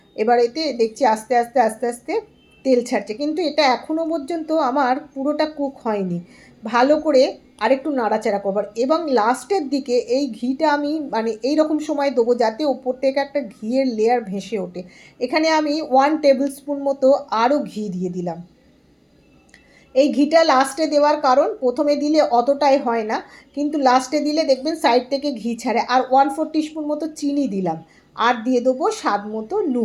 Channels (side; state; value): both; identical; correlation 1.00